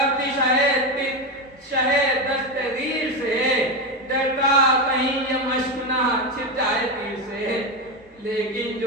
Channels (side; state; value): both; normal; correlation 0.13